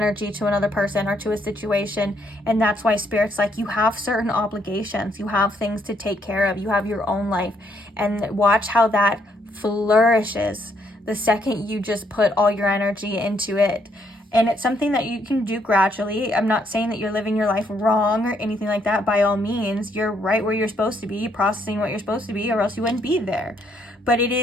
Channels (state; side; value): normal; both; correlation 0.72